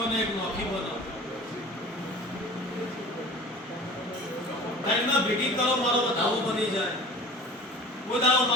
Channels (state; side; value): normal; both; correlation 0.41